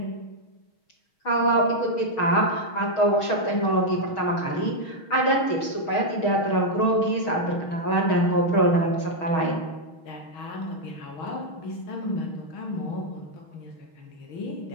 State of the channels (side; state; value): right; late; 6.3 ms